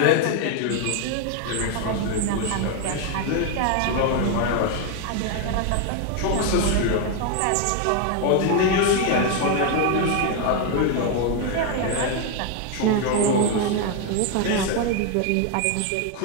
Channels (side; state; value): both; different; correlation 0.01